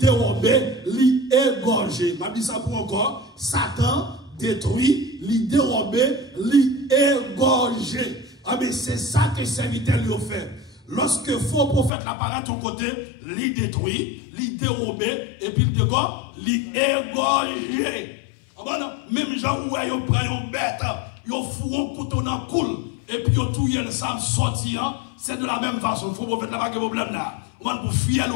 il égorge. Je dis ça pour encore. Satan détruit, il dérobe, il égorge. Ah mais c'est ça que le serviteur lui a fait. Lorsque faux prophète apparaît à ton côté, il détruit, il dérobe, et puis il dégorge, il égorge. Même gens où ils prennent une bête, ils font un couteau dans le coule, et puis ils tuent le sang sortir, c'est de la même façon. Il faut prophète n'a pas de problème là. On va pour fier le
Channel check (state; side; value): drops out; right; at 11.9 s